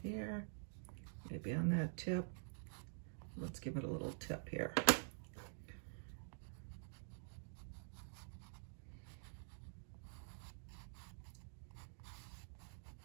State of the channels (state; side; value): silent; left; digital silence